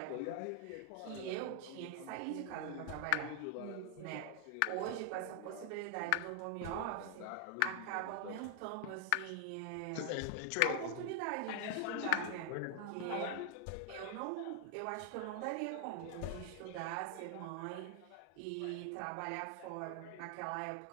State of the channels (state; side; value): different; both; correlation 0.00